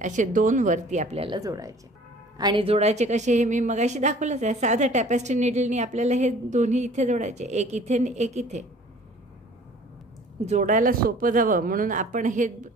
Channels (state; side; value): normal; both; correlation 0.50